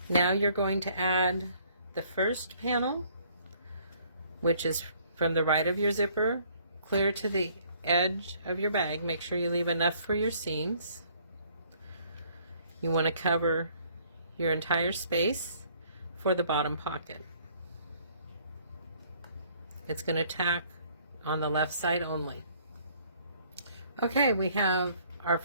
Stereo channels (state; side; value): inverted; both; correlation -0.61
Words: Now you're going to add the first panel, which is from the right of your zipper clear to the edge of your bag. Make sure you leave enough for your seams. You want to cover your entire space for the bottom pocket. It's going to tack on the left side only. Okay, we have our